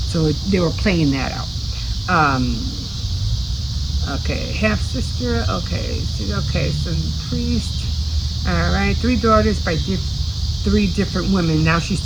So they were playing that out. Okay, half sister. Okay, so priest. All right, three daughters by three different women. Now she's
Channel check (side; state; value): left; noise; hiss, 29 dB below the sound